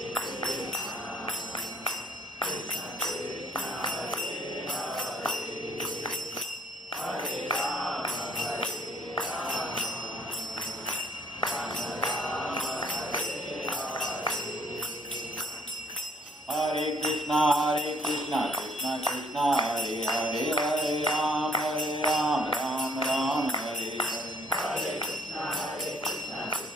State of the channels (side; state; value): both; normal; correlation 0.62